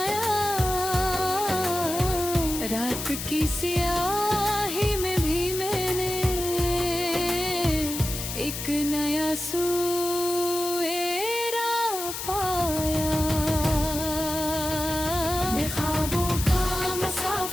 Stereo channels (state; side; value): noise; left; hiss, 6 dB below the sound